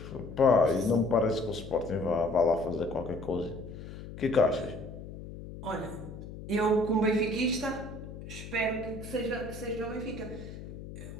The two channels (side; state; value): left; noise; hum, 12 dB below the sound